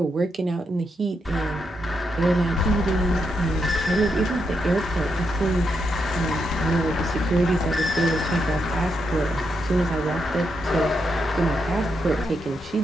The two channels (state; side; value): normal; both; correlation 0.82